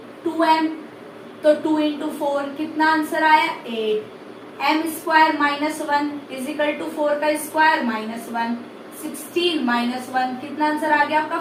2m, तो 2 इंटू 4 कितना आंसर आया 8। m square minus 1 equal to 4 का स्क्वायर माइनस 1, 16 माइनस 1 कितना आंसर आ गया आपका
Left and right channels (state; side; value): identical; both; correlation 1.00